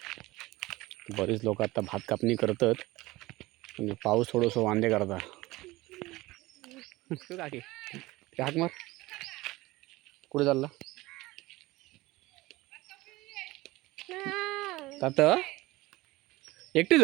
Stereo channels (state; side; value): quieter; left; 19.7 dB